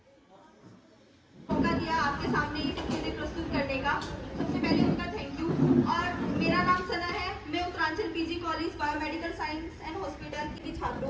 मौका दिया आपके सामने ये सब चीजें प्रस्तुत करने का, सबसे पहले उनका थैंक यू। और मेरा नाम सना है, मैं Uttaranchal PG college biomedical science and hospital की छात्र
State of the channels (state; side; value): identical; both; correlation 1.00